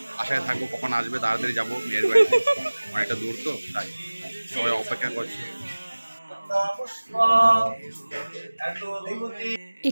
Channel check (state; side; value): inverted; both; correlation -1.00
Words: আশায় থাকবো কখন আসবে, তাড়াতাড়ি যাবো। মেয়ের বাড়িতে অনেকটা দূর তো, তাই সবাই অপেক্ষা করছে।